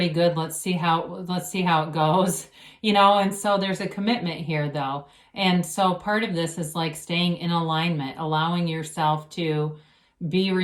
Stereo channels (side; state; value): both; identical; correlation 1.00